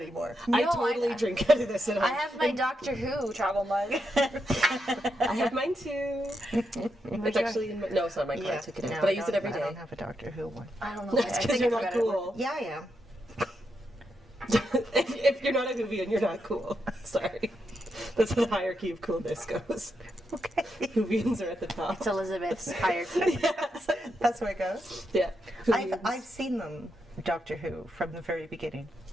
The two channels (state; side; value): normal; both; correlation 0.83